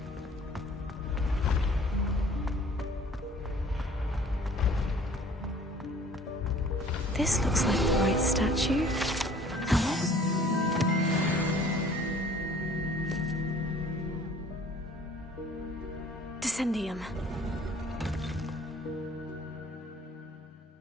This looks like the right statue. Now what was... Descendium.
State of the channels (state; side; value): normal; both; correlation 0.53